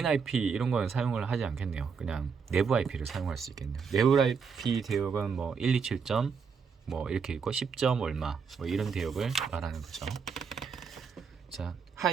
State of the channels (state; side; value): quieter; left; 5.9 dB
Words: IP 이런 거는 사용을 하지 않겠네요. 그냥 내부 IP를 사용할 수 있겠네요. 내부 IP 대역은 뭐 127점 뭐 이렇게 있고 10점 얼마 뭐 이런 대역을 말하는 거죠. 자,